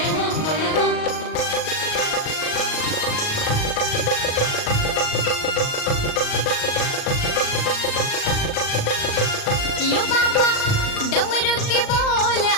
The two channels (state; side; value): late; right; 38 ms